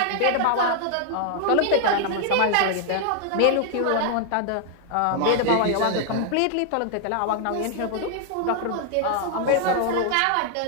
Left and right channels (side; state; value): both; different; correlation 0.00